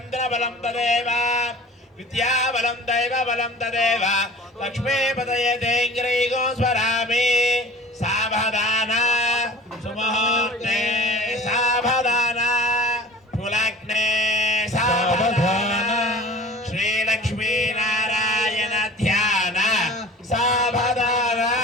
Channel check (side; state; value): both; normal; correlation 0.43